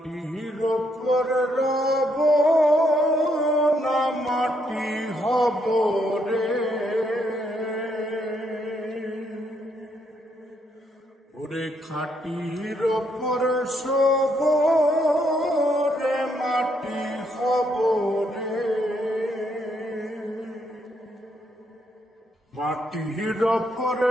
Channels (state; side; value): normal; both; correlation 0.75